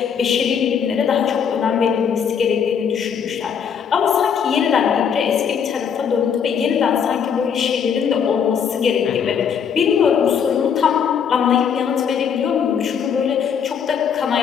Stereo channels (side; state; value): right; quieter; 7.3 dB